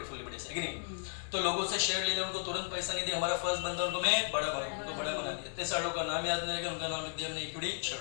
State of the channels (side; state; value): right; silent; digital silence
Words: फुल्ली पेड, है कि नहीं? तो लोगों से शेयर ले लिया, उनको तुरंत पैसा नहीं दिया, हमारा फर्स्ट बंदा उनको मैं बड़ा बना, उनको बड़ा बना दिया, 3 सालों का नाम याद नहीं लगा, उनका नाम लिख दिया हमने इक्विटी शेयर।